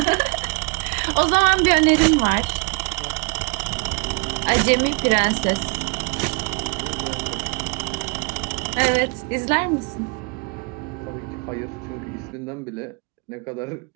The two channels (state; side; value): quieter; left; 32.2 dB